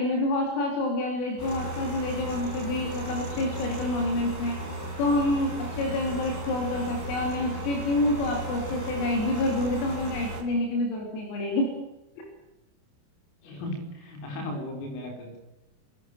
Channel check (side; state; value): right; late; 28 ms